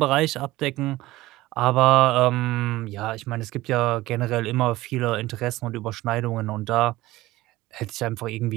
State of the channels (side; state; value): left; quieter; 17.7 dB